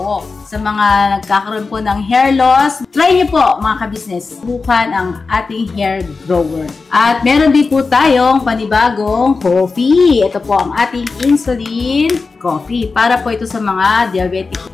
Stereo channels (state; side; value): quieter; right; 4.3 dB